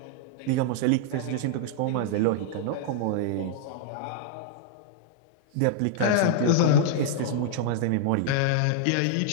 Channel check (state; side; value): different; both; correlation -0.01